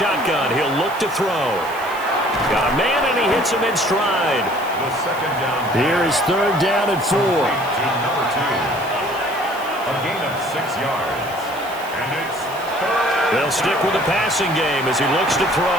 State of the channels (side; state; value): right; noise; hiss, 18 dB below the sound